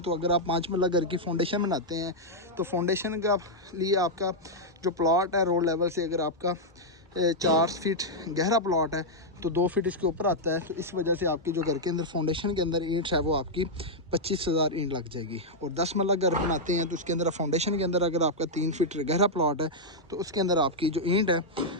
अगर आप 5 मरला घर की फाउंडेशन बनाते हैं तो फाउंडेशन का लिए आपका जो प्लॉट है रोड लेवल से, अगर आपका 4 फीट गहरा प्लॉट है तो 2 फीट इसके ऊपर आता है, तो इस वजह से आपकी जो घर के अंदर फाउंडेशन के अंदर ईंट है वो आपकी 25,000 ईंट लग जाएगी। और 10 मरला घर बनाते हैं तो उसके अंदर फाउंडेशन के अंदर अगर आपका 3 फीट गहरा प्लॉट है तो उसके अंदर आपकी जो ईंट है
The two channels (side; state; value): both; normal; correlation -0.04